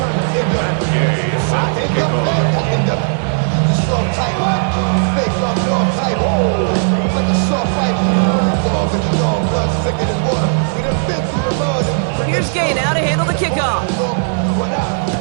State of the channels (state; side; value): silent; left; 60 dB below the other